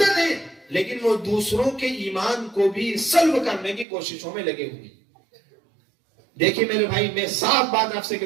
ہیں، لیکن وہ دوسروں کے ایمان کو بھی سلب کرنے کی کوششوں میں لگے ہوئے۔ دیکھیں میرے بھائی، میں صاف بات آپ سے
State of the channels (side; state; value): left; drops out; at 3.9 s